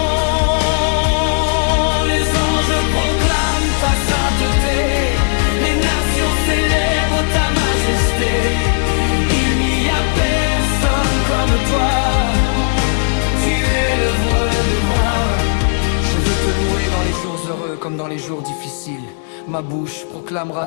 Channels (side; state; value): right; silent; digital silence